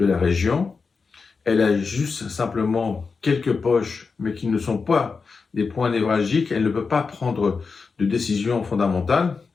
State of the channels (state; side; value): quieter; right; 4.9 dB